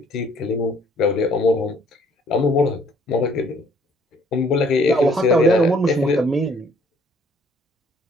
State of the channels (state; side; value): normal; both; correlation 0.61